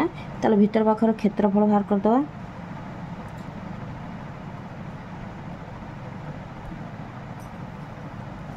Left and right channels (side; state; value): both; identical; correlation 1.00